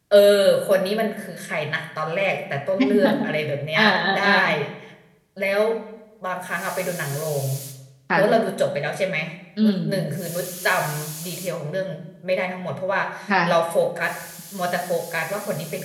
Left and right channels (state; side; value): identical; both; correlation 1.00